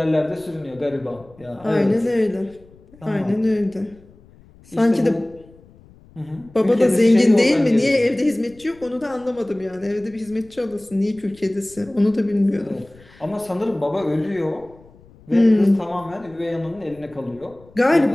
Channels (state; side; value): noise; left; rumble, 26 dB below the sound